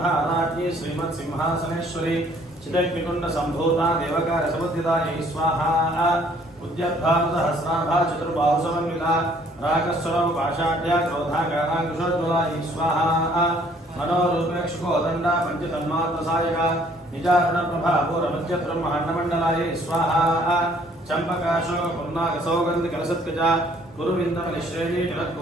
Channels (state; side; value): normal; both; correlation 0.60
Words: श्रीमत् सिंहासनेश्वरी चिदग्निकुंड संभूता देवकार समुद्दितायै स्वाहा। उद्यद्भाव सहस्राभा चतुर्बाहु समन्विता रागस्वरम पाषाढ्या क्रोधाकारांकुशोज्ज्वलायै स्वाहा। मनोरूपेक्षुकोदंडा पंचतन्मात्रसायका निजारण प्रभा पूर्वमध्य ब्रह्माण्डमण्डलायै स्वाहा। चंपकाशोक पुन्नाक सौगंध कलसत्कजा गुरुविंदमनिश्रेणी